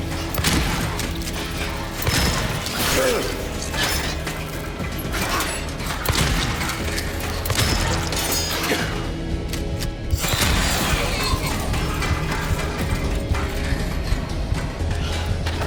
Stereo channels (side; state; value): both; identical; correlation 1.00